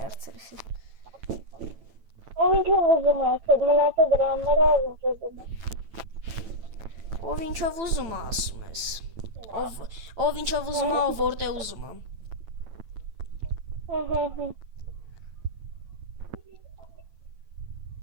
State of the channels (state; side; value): late; left; 9.0 ms